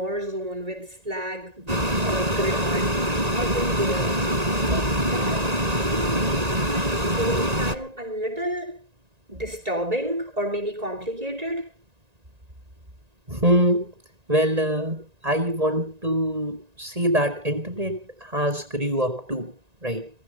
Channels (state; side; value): late; left; 1.9 ms